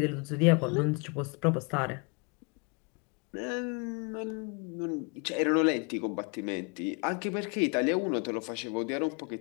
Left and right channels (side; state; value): right; quieter; 33.7 dB